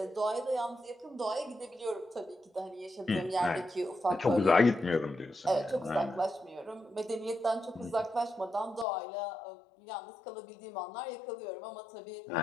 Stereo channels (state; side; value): drops out; right; at 8.8 s